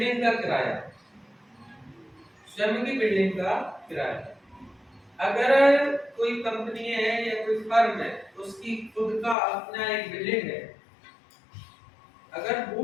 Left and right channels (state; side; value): drops out; right; at 9.3 s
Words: का किराया, स्वयं की बिल्डिंग का किराया, अगर कोई कंपनी है या कोई फर्म है उसकी खुद का अपना एक बिल्डिंग है, अगर